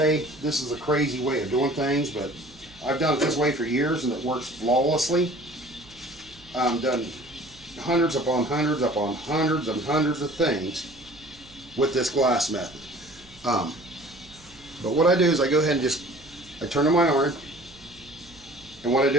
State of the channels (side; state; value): right; noise; hum, 25 dB below the sound